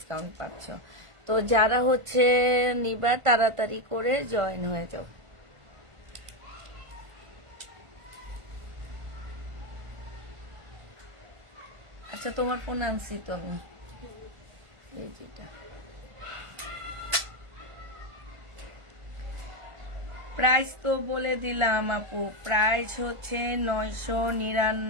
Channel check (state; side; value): late; left; 1.5 ms